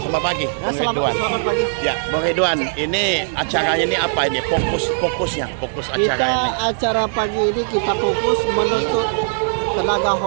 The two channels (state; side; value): silent; left; digital silence